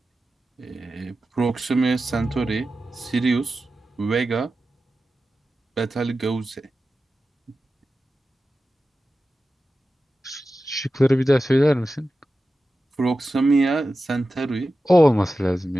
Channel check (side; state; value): both; normal; correlation 0.93